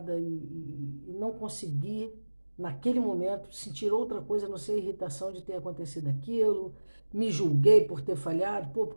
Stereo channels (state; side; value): inverted; both; correlation -1.00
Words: e não consegui, naquele momento, sentir outra coisa, a não ser a irritação de ter acontecido aquilo. Me julguei por ter falhado. Pô, por